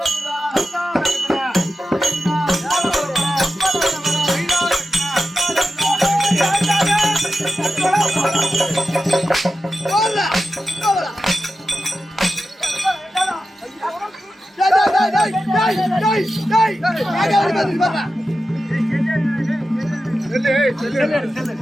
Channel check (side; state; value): both; normal; correlation 0.92